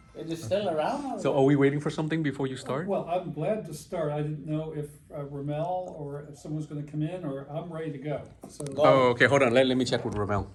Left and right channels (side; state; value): both; identical; correlation 1.00